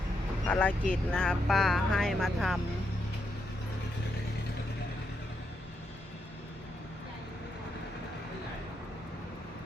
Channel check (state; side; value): normal; both; correlation 0.81